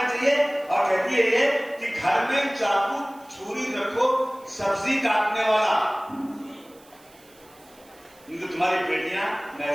चाहिए और कहती है ये कि घर में चाकू छुरी रखो, सब्जी काटने वाला, क्योंकि तुम्हारी बेटियां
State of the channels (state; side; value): noise; right; hiss, 27 dB below the sound